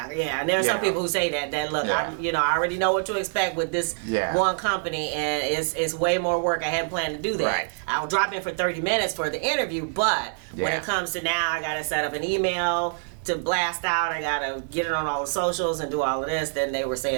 there are some people who say that look, I already know what to expect with this one company, and it's way more work. I hadn't planned to do that. I'll drop in for 30 minutes for the interview, but when it comes to now, I gotta set up an email to blast out, I gotta get it on all the socials and do all of this. Then they were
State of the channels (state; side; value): silent; left; digital silence